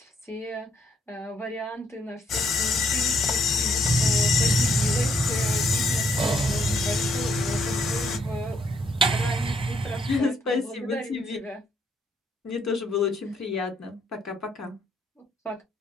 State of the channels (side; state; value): both; normal; correlation 0.71